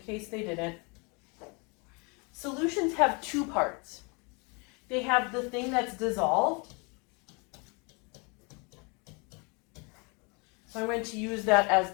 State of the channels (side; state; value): right; quieter; 31.3 dB